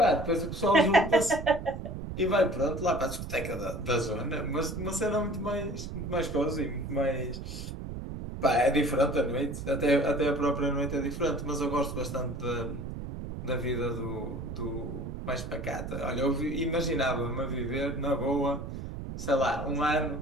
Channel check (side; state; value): right; noise; rumble, 7 dB below the sound